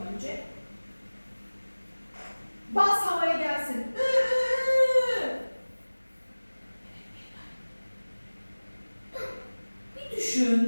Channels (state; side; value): inverted; both; correlation -1.00